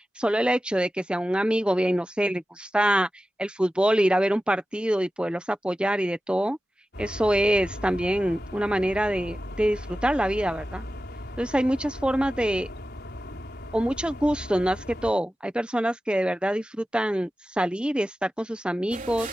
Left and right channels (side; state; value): both; normal; correlation 0.94